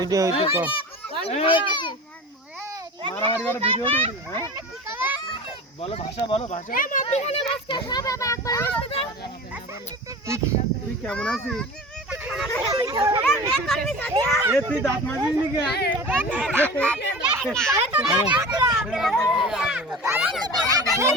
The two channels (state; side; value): normal; both; correlation 0.35